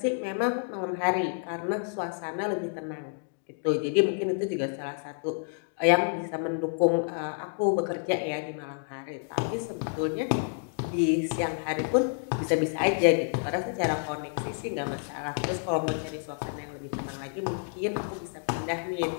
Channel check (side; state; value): right; silent; digital silence